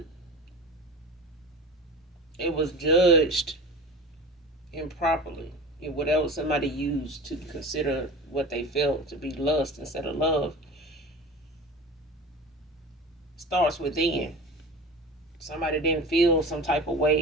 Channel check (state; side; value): normal; both; correlation 0.34